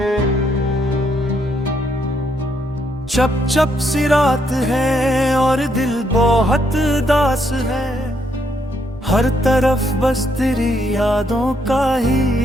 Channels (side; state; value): both; normal; correlation 0.74